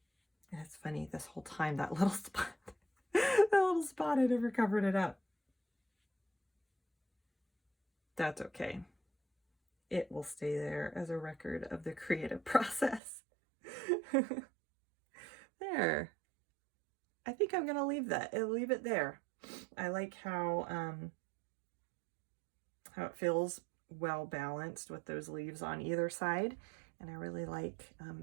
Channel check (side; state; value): left; drops out; at 13.0 s